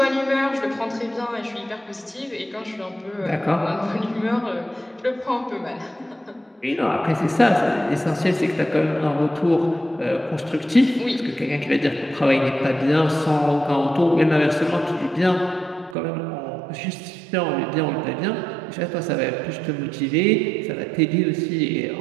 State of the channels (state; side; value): drops out; left; at 16.0 s